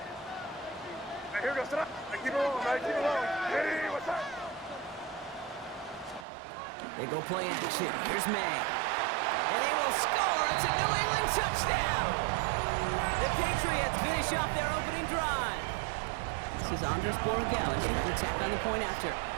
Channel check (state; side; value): drops out; left; at 6.2 s